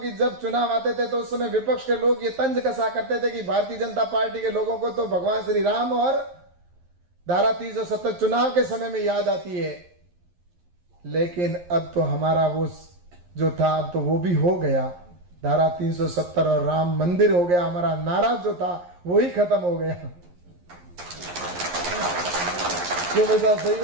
जब चुनाव आते थे तो उस समय विपक्ष के लोग ये तंज कसा करते थे कि भारतीय जनता पार्टी के लोगों को तो भगवान श्री राम और धारा 370 चुनाव के समय में याद आती है। लेकिन अब तो हमारा वो जो था, अब तो वो भी हो गया। धारा 370 और राम मंदिर हो गया। हमारा नारा जो था वो ही खत्म हो गया। क्यों भाई साहब,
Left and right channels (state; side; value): late; left; 11 ms